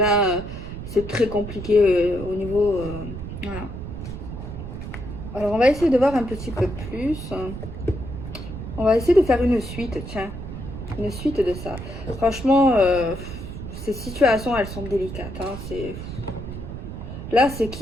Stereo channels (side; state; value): right; noise; rumble, 9 dB below the sound